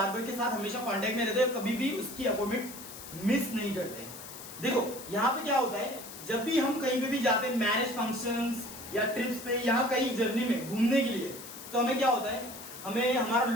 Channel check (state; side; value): noise; left; hiss, 13 dB below the sound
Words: के साथ हमेशा कांटेक्ट में रहते हैं, कभी भी उसकी अपॉइंटमेंट मिस नहीं करते। देखो यहाँ पे क्या होता है, जब भी हम कहीं पे भी जाते हैं, मैरिज फंक्शंस या ट्रिप्स पे, यहाँ कहीं जर्नी में घूमने के लिए, तो हमें क्या होता है, हमें हमारा